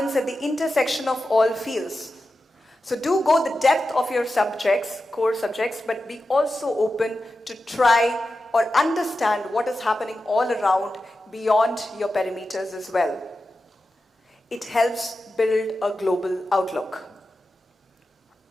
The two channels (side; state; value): both; normal; correlation 0.92